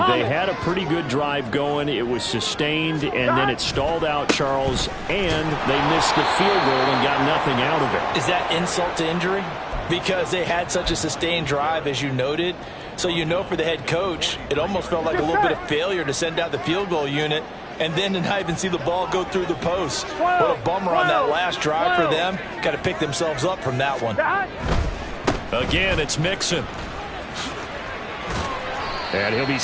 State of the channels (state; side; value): identical; both; correlation 1.00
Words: They had a pretty good drive going. It was sustained, and then it stalled out, Charles, and they missed the field goal and got nothing out of it. Is that insult to injury? Because they had such a sustained drive, as you noted. So you know for the head coach, it almost felt like a little bit of failure to send out the field goal unit and then to not even see the ball go through the post. What a bummer on that last drive for them. Got to pick themselves up from that one. Again, it's Mixon. And he'll be